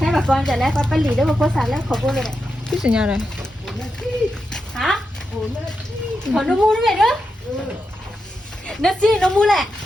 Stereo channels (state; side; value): normal; both; correlation 0.87